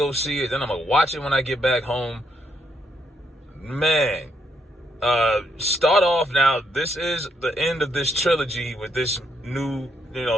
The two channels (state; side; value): normal; both; correlation 0.76